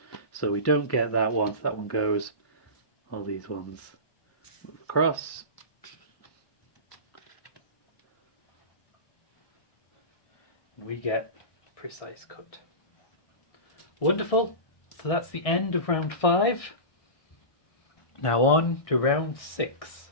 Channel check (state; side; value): late; right; 1.6 ms